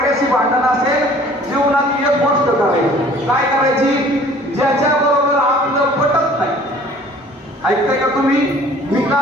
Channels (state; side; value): normal; both; correlation 0.51